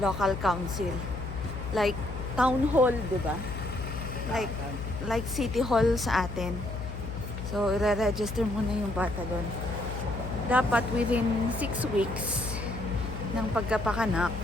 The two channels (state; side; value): noise; left; hum, 7 dB below the sound